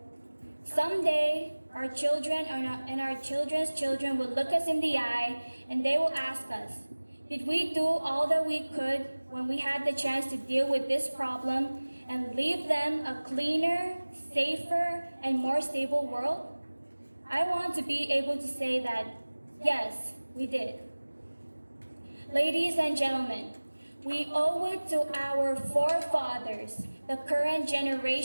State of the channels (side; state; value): both; inverted; correlation -1.00